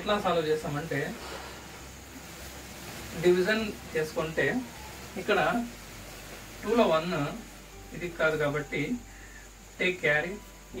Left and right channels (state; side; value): identical; both; correlation 1.00